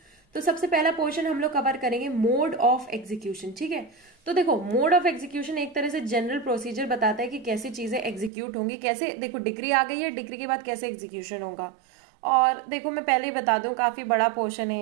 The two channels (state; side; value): drops out; left; at 8.3 s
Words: तो सबसे पहला पोर्शन हम लोग कवर करेंगे मोड ऑफ एग्जीक्यूशन। ठीक है, तो देखो मोड ऑफ एग्जीक्यूशन एक तरह से जनरल प्रोसीजर बताता है कि कैसी चीजें एग्जीक्यूट होंगी, कैसे। देखो डिग्री आ गई है, डिग्री के बाद कैसे एग्जीक्यूशन होगा। और देखो मैं पहले ही बता दूं, काफी बड़ा पोर्शन